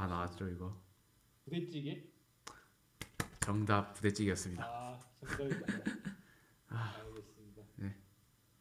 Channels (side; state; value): both; identical; correlation 1.00